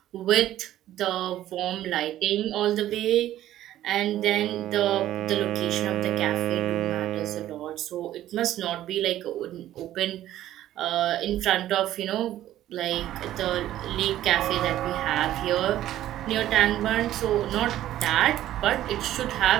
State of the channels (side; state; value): left; quieter; 13.1 dB